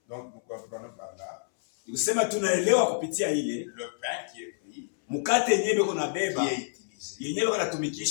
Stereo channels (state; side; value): silent; right; 59 dB below the other